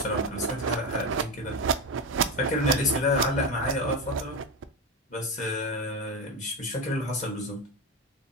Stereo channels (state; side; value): normal; both; correlation 0.16